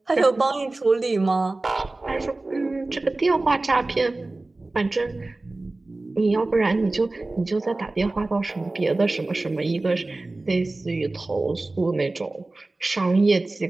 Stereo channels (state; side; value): quieter; left; 3.1 dB